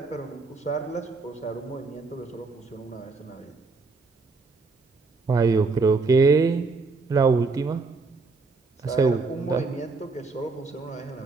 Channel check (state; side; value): quieter; left; 4.1 dB